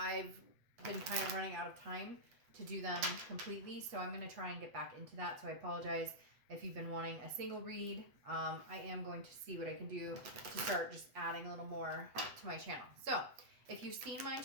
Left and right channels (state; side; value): late; left; 8.1 ms